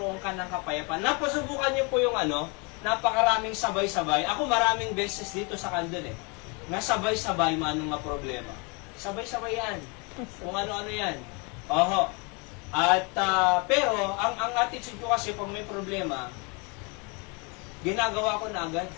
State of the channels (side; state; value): right; quieter; 31.5 dB